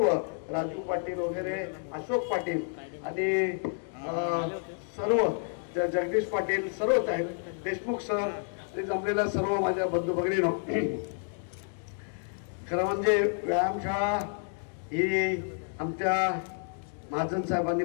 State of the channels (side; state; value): right; silent; 58 dB below the other